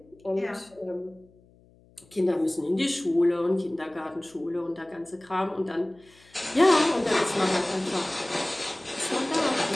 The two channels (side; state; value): left; noise; hum, 29 dB below the sound